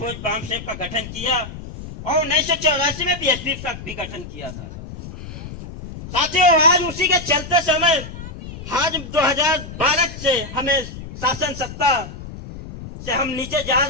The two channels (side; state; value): left; noise; rumble, 12 dB below the sound